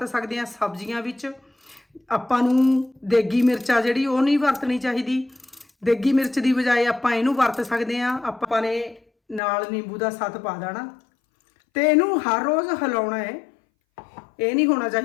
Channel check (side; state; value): right; drops out; at 9.4 s